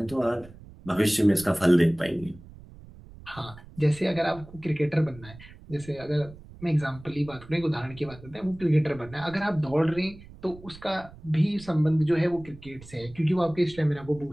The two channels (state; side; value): noise; right; rumble, 19 dB below the sound